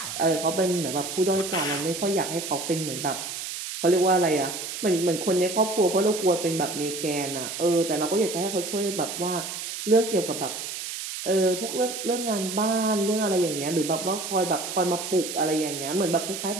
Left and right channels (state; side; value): noise; right; hiss, 7 dB below the sound